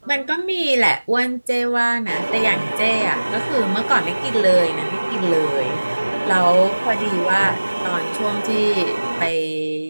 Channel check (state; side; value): inverted; both; correlation -1.00